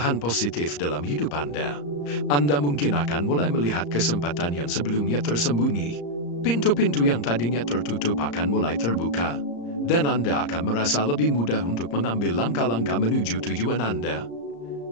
positif dalam hidup Anda. Anda mungkin akan mulai melihat kesempatan yang sebelumnya tersembunyi. Pintu-pintu yang tadinya tertutup akan mulai terbuka, dan Anda akan merasa lebih mudah untuk mengambil langkah-langkah menuju tujuan Anda.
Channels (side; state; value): right; late; 34 ms